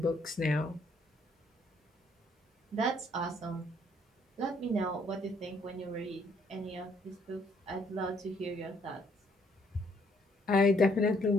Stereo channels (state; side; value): normal; both; correlation 0.67